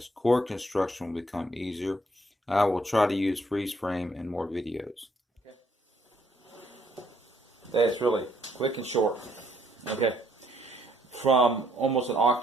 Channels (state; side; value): normal; both; correlation 0.68